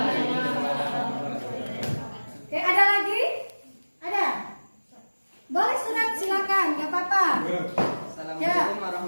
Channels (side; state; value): both; inverted; correlation -1.00